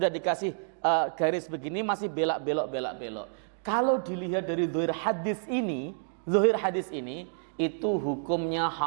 dikasih garis begini masih belak-belok. Kalau dilihat dari zahir hadis ini itu hukumnya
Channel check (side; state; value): left; silent; digital silence